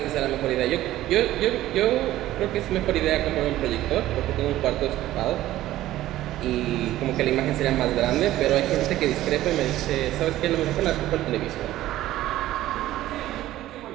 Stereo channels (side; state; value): left; quieter; 14.7 dB